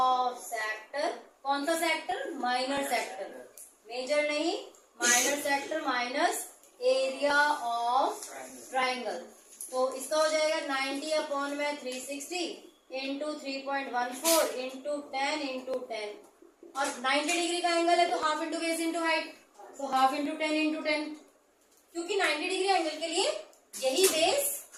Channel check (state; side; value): identical; both; correlation 1.00